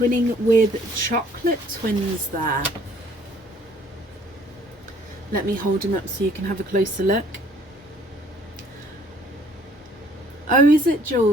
with chocolate twins there. Let me hold them up so you can have a closer look. Oh, is it,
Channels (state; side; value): normal; both; correlation 0.59